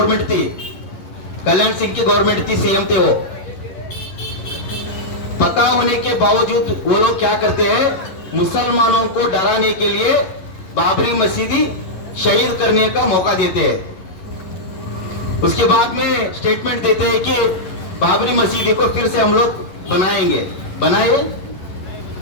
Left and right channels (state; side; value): late; right; 11 ms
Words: थी, कल्याण सिंह की गवर्नमेंट थी, सीएम थे वो। पता होने के बावजूद वो लोग क्या करते हैं? मुसलमानों को डराने के लिए बाबरी मस्जिद शहीद करने का मौका देते हैं। उसके बाद में स्टेटमेंट देते हैं कि बाबरी मस्जिद को फिर से हम लोग बनाएंगे।